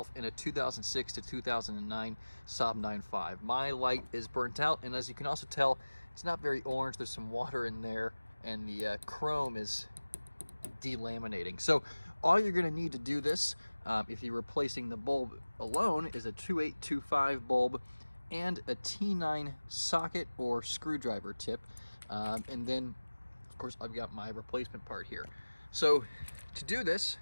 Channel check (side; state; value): both; inverted; correlation -1.00